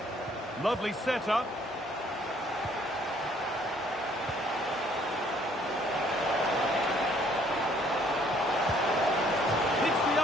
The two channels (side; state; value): both; normal; correlation 0.62